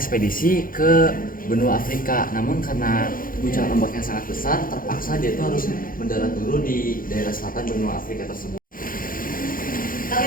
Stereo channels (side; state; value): right; late; 0.41 ms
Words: ke benua Afrika. Namun karena guncangan ombak yang sangat besar, terpaksa dia itu harus mendarat dulu di daerah selatan benua Afrika tersebut.